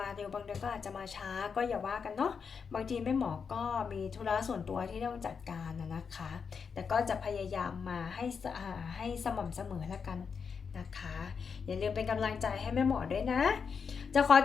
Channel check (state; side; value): quieter; right; 6.0 dB